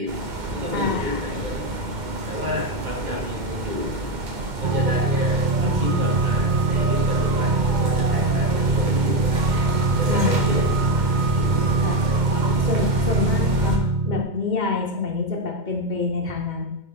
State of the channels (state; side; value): late; left; 2.2 ms